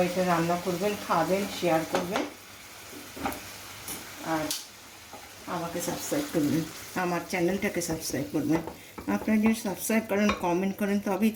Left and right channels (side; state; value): both; identical; correlation 1.00